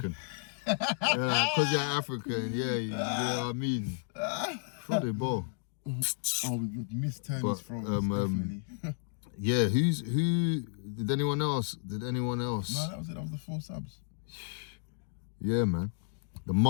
Because you're African, yeah, you know what I mean. Throw the ball. Oh, we missed Tony's throws, definitely. Yeah, who? Did anyone else? No, that was it. That was the 4 subs. Yeah, man. The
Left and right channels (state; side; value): silent; right; digital silence